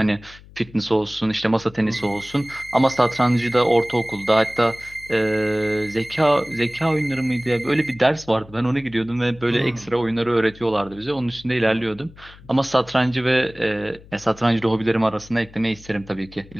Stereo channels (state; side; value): noise; left; hum, 22 dB below the sound